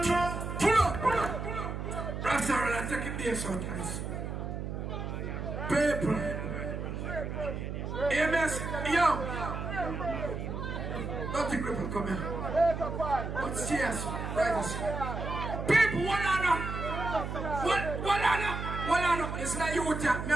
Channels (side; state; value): right; noise; hum, 5 dB below the sound